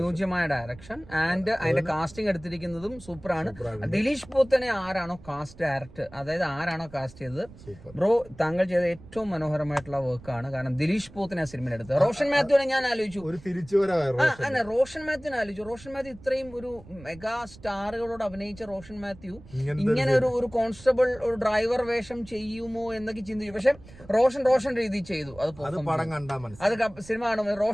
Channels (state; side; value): noise; right; rumble, 20 dB below the sound